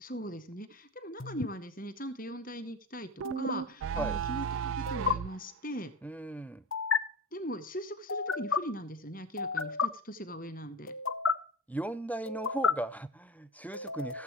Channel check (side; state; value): both; normal; correlation 0.27